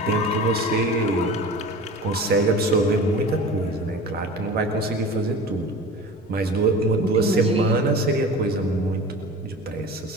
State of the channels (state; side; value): normal; both; correlation 0.36